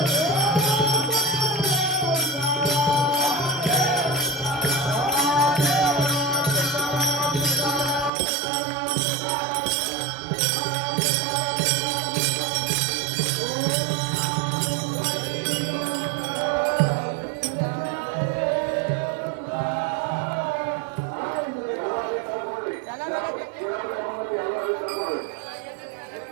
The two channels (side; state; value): left; drops out; at 8.1 s